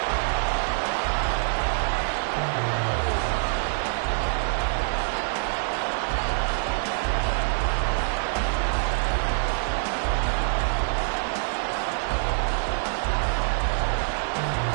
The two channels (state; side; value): silent; left; 61 dB below the other